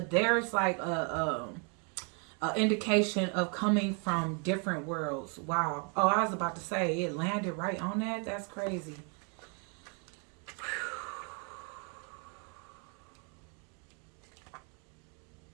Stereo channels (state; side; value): quieter; left; 37.0 dB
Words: like a indication of coming from different worlds. Wow. Oh, I was about to say it landed right on that. That's crazy.